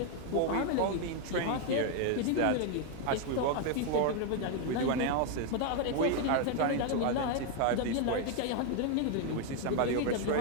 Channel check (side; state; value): both; different; correlation 0.01